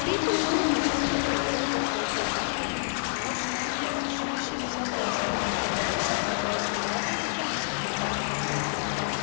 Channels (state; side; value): silent; right; digital silence